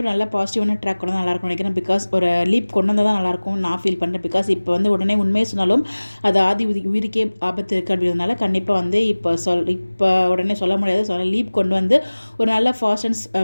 ஒரு நல்ல பாசிட்டிவான ட்ராக் கொண்டு நல்லா இருக்கும் நினைக்கிறேன். பிகாஸ் ஒரு லீப் கொண்டு வந்தால் தான் நல்லாயிருக்கும் நான் ஃபீல் பண்ணுறேன். பிகாஸ் இப்போ வந்து உடனே உண்மையை சொன்னாலும் அது ஆதி உயிருக்கே ஆபத்து இருக்குது அப்படின்றதுனால கண்டிப்பாக வந்து இப்போ உடனே சொல்ல முடியாது. ஸோ லீப் கொண்டு வந்து ஒரு நல்ல ஃபாஸ்ட் அண்ட்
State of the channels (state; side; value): inverted; both; correlation -1.00